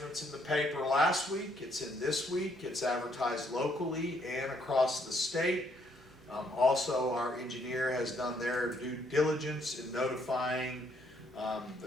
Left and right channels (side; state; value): right; noise; rumble, 30 dB below the sound